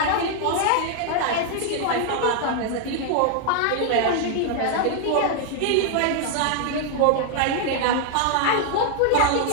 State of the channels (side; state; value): both; different; correlation 0.00